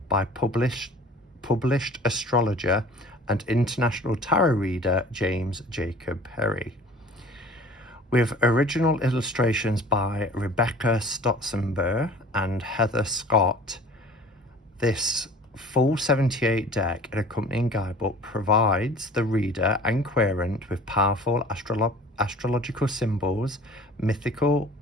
by published astrologer and international tarot reader James Jacob Perry, with original illustrations by Rebecca Stotzenberg and Heather Scott. This full 78 deck and accompanying guidebook provides the reader and querent with powerful astrological symbols, mythical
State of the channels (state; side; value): normal; both; correlation 0.46